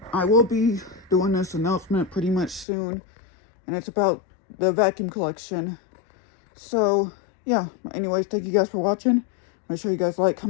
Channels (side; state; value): right; drops out; at 2.7 s